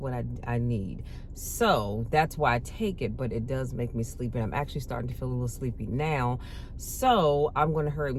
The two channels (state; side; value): identical; both; correlation 1.00